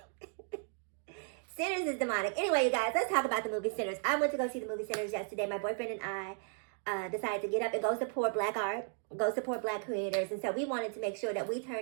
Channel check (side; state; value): left; silent; 54 dB below the other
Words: Sinners is demonic. Anyway, you guys, let's talk about the movie Sinners. I went to go see the movie Sinners yesterday. My boyfriend and I decided to get up and go support Black art, go support Black creators. And so we wanted to make sure that we